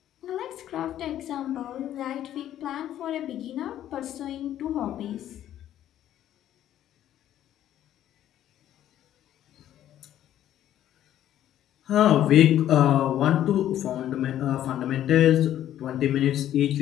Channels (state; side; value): quieter; right; 11.8 dB